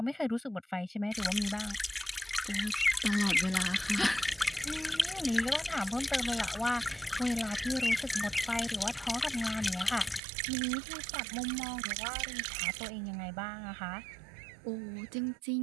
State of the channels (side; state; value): left; drops out; at 10.2 s